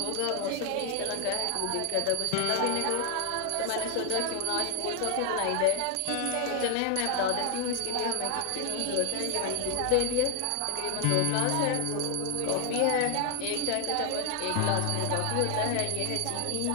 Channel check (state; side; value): different; both; correlation 0.00